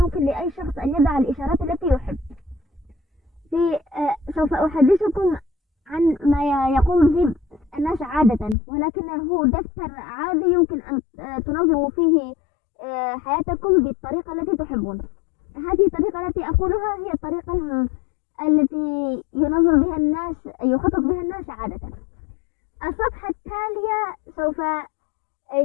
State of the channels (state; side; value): drops out; right; at 8.6 s